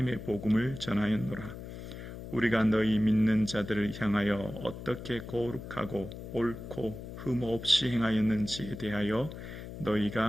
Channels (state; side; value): noise; left; hum, 11 dB below the sound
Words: 복음을 전하였노라. 우리가 너희 믿는 자들을 향하여 어떻게 거룩하고 옳고 흠 없이 행하였는지에 대하여